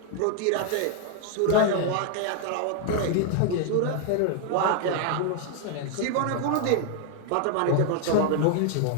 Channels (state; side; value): different; both; correlation 0.00